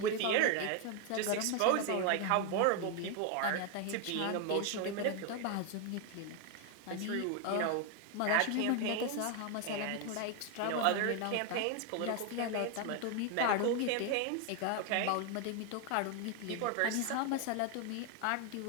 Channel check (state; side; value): different; both; correlation 0.01